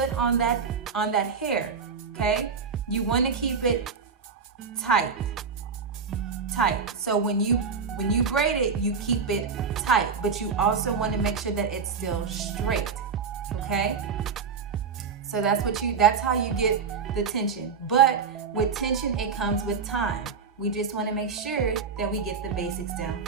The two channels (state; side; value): quieter; left; 5.7 dB